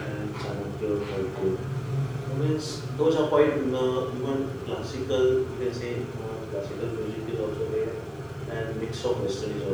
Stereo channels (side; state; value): both; identical; correlation 1.00